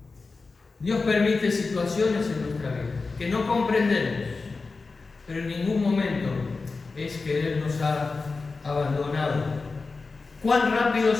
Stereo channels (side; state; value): right; quieter; 4.1 dB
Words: Dios permite situaciones en nuestra vida que no comprendemos, pero en ningún momento es que Él nos ha abandonado. Cuán rápido